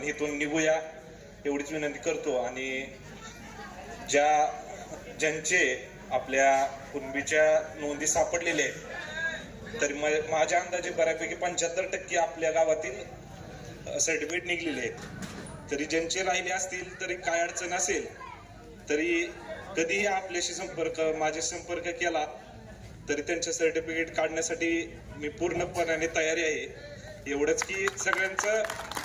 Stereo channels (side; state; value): both; identical; correlation 1.00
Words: इथून निघूया एवढीच विनंती करतो. आणि ज्यांचे आपल्या कुणबीच्या नोंदी सापडलेल्या आहेत तर माझ्या अंदाजे बऱ्यापैकी 75% आपल्या गावातील सर्टिफिकेट निघलेले आहेत. तरी ज्यांचे राहिले असतील तरी काय अडचण असेल तरी कधीही आपल्याशी माझे संपर्क केला तरी त्यांचे सर्टिफिकेट काढण्यासाठी मी पूर्णपणे तयारी आहे. एवढंच की सगळ्यांचं